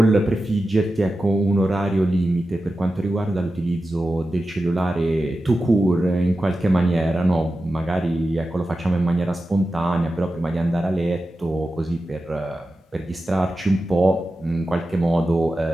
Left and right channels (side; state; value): both; normal; correlation 0.92